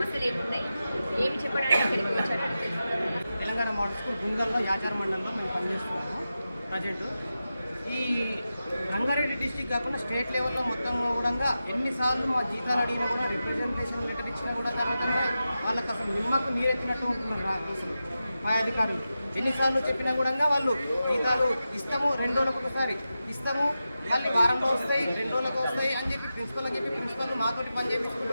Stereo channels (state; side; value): inverted; both; correlation -0.92